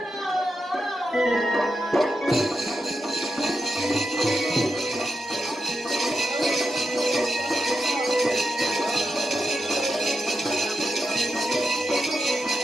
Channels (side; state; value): both; normal; correlation 0.86